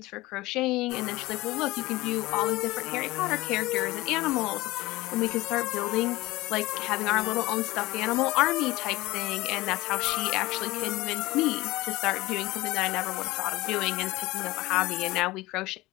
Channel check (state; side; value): quieter; right; 19.6 dB